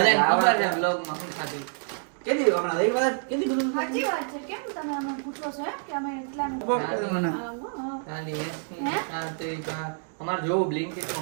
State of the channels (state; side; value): silent; left; 60 dB below the other